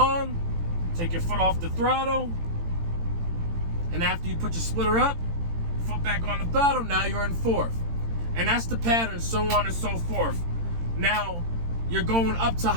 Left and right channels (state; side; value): late; left; 18 ms